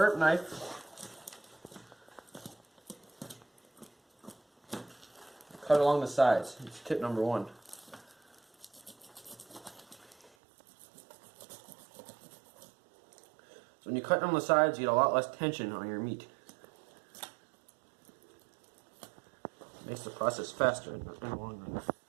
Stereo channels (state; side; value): drops out; left; at 10.3 s